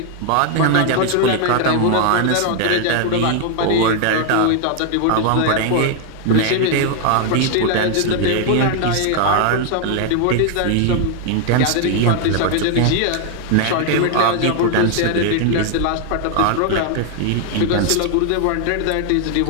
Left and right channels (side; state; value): both; different; correlation 0.00